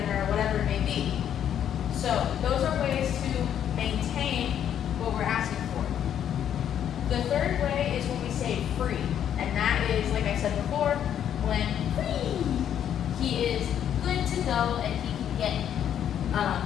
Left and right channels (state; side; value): quieter; right; 9.7 dB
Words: or whatever it may be. So those are ways to maintain what we're asking for. The third way is when we say free, and that is, like I said before, when free, he is good to go and he can